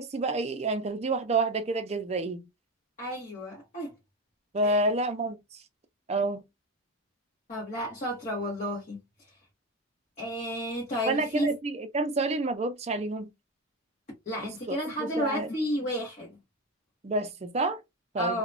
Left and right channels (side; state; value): both; normal; correlation 0.18